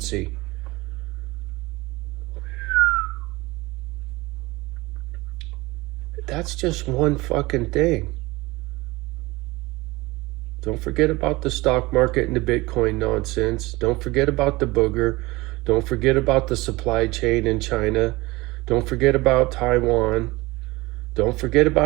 That's just one fucking thing. Don't forget about the stock market and the Bitcoin nonsense. Don't forget about the booger. Don't forget about the supply chain in China. Don't forget about Taiwan. Don't forget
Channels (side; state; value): left; quieter; 21.5 dB